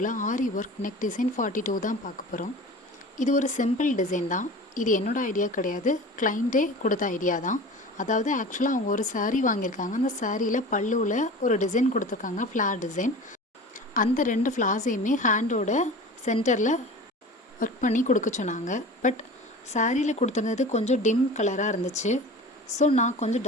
ஆரி work neck design 42 தான் பார்க்க போகிறோம். இது ஒரு சிம்பிள் டிசைன் தான். இது என்னோடய ஐடியா கிடையாது, கிளைண்ட்டே கொடுத்த ஐடியா தான். அதாவது ஆக்சுவலாக அவங்க ஒரு saree வாங்கியிருக்காங்க. அந்த சாரியில் பல்லுவில் ஒரு டிசைன் கொடுத்துருக்காங்க, ஃப்ளார் டிசைன். அந்த 2 ஃப்ளார்ஸையுமே ஹேண்டோட சென்டரில் ஒர்க் பண்ணி கொடுக்க சொன்னாங்க. பட் சாரியில் கொடுத்துருந்தது கொஞ்சம் டிம் கலராக இருந்துச்சு. ஸோ நான் கொஞ்சம்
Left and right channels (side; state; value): both; normal; correlation 0.37